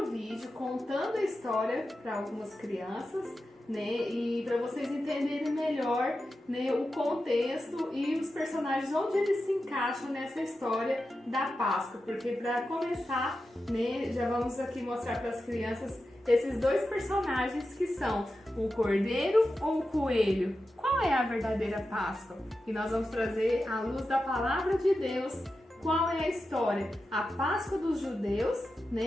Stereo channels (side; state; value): both; normal; correlation 0.91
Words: vídeo contando a história para algumas crianças, né, e para vocês entenderem melhor, né, o contexto e os personagens, onde eles se encaixam nessa história da Páscoa. Porque para começar, né, já vamos aqui mostrar para as crianças esses dois personagens que são o cordeiro ou o coelho. Qual é a verdadeira Páscoa? E nós vamos trazer à luz da palavra de Deus qual é a história, a Páscoa dos judeus,